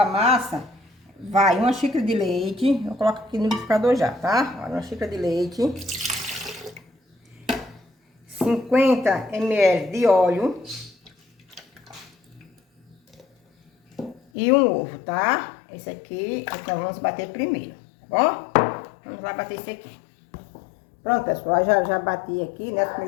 massa vai uma xícara de leite, eu coloco aqui no liquidificador já, tá? Olha, uma xícara de leite. 50 ml de óleo e um ovo, tá? Esse aqui é que nós vamos bater primeiro, tá bom? Vamos lá bater esse aqui. Pronto, pessoal, já bati aqui, né, os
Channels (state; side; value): drops out; right; at 14.2 s